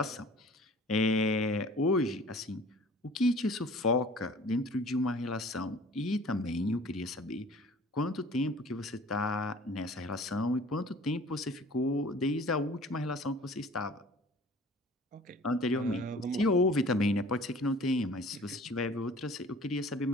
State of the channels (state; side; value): normal; both; correlation 0.48